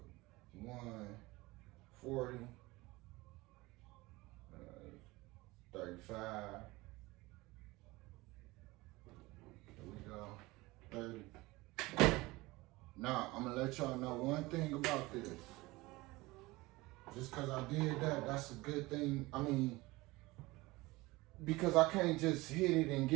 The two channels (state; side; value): quieter; left; 21.2 dB